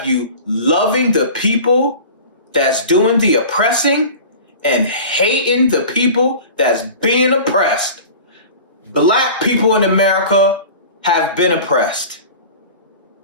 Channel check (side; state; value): both; inverted; correlation -0.38